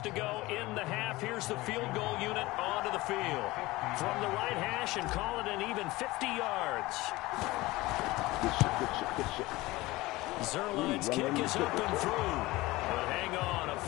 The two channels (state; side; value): quieter; right; 19.9 dB